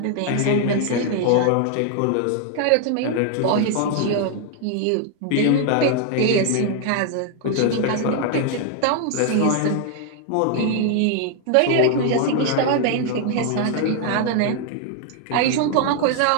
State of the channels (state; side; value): different; both; correlation 0.00